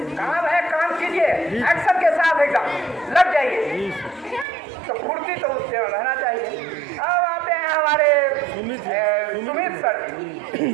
काम है काम कीजिए, एक्शन के साथ एकदम लग जाइए, तो फुर्ती तो उससे रहना चाहिए। अब आते हैं हमारे सुमित सर।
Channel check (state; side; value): drops out; left; at 4.5 s